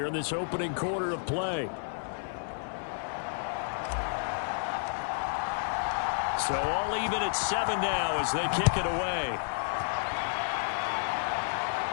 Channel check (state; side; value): silent; right; 57 dB below the other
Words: in this opening quarter of play. So all even at 7 now as they kick it away.